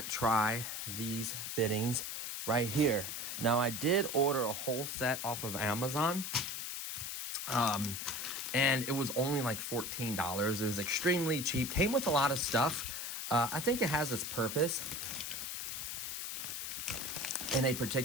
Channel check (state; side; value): noise; left; hiss, 5 dB below the sound